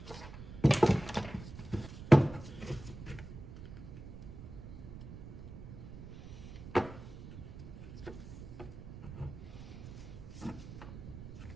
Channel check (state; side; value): noise; right; rumble, 12 dB below the sound